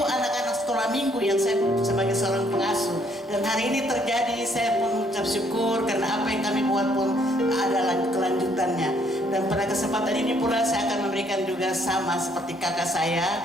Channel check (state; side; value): normal; both; correlation 0.67